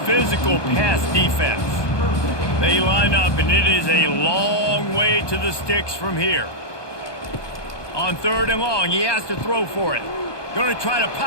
pass defense. They line up, and it is a long way to the sticks from here. On third and long, he has to throw for it. Going to try to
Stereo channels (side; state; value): right; late; 1.2 ms